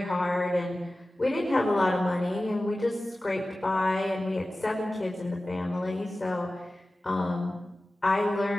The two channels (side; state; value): both; normal; correlation 0.96